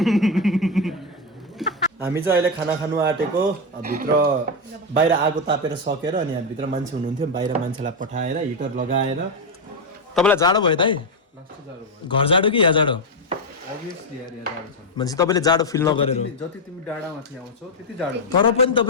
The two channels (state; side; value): normal; both; correlation 0.05